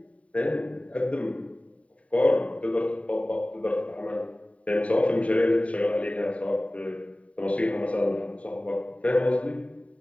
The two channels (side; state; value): right; late; 0.066 ms